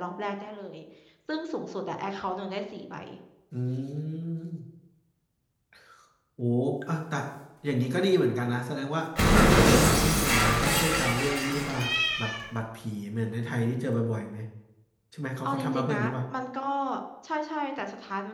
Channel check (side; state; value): both; identical; correlation 1.00